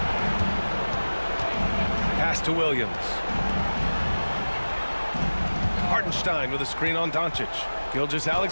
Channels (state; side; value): inverted; both; correlation -1.00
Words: Pass to Williams. Hartenstein with a screen on Doncic.